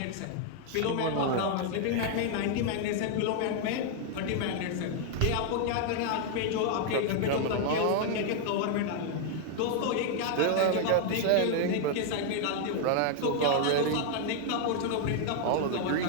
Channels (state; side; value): different; both; correlation 0.00